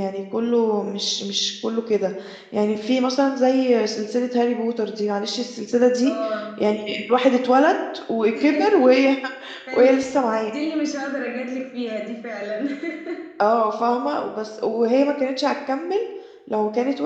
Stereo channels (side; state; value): both; identical; correlation 1.00